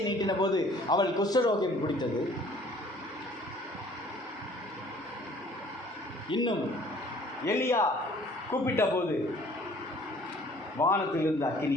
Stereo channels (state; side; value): normal; both; correlation 0.55